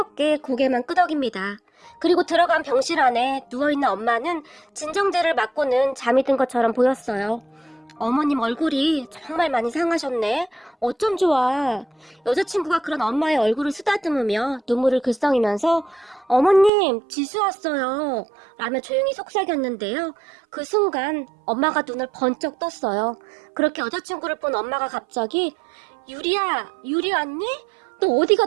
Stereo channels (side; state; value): left; drops out; at 16.7 s